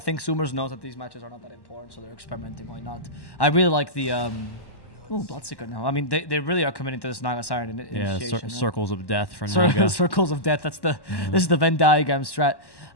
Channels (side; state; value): right; late; 1.1 ms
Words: Zoomers knows that these matches are not that important, so they're experimenting. Why not? I really like the... Bloodseeker now. I mean, they really are committing to this Naga Siren initiation. Circles of Death for Naga. Circles of Death. That's this is the Venn diagram strat.